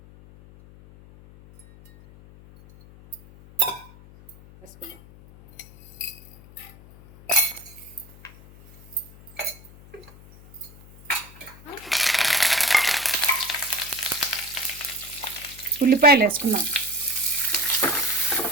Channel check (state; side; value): noise; left; hum, 21 dB below the sound